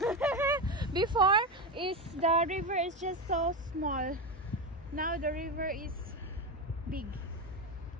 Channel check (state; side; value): normal; both; correlation 0.15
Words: Before is the river is just so small. Now the river is big.